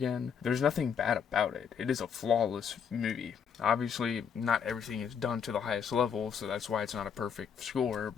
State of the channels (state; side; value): quieter; right; 7.1 dB